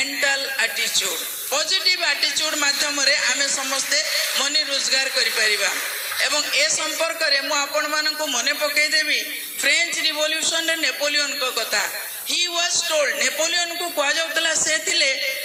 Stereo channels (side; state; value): both; identical; correlation 1.00